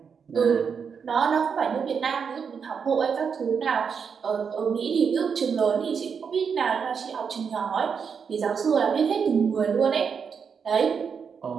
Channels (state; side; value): quieter; left; 6.4 dB